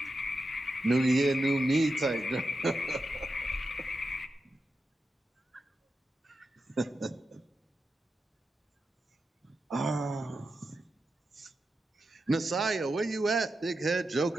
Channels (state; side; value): normal; both; correlation 0.89